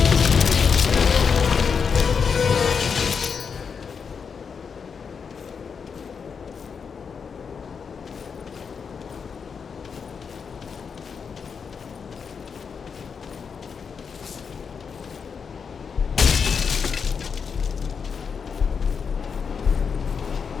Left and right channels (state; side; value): quieter; right; 6.1 dB